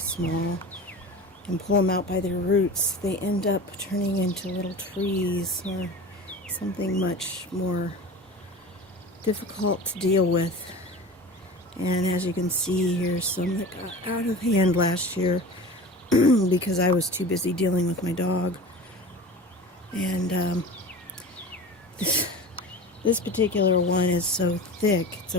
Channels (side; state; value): both; normal; correlation 0.35